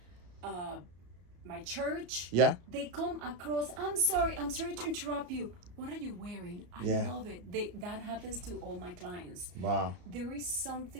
my church. Yeah. They come across. I'm sorry to interrupt you. What are you wearing? I Yeah. love it. That happens to all my clients. Wow. There is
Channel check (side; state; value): left; late; 34 ms